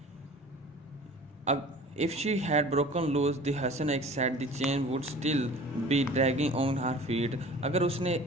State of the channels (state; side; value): normal; both; correlation 0.44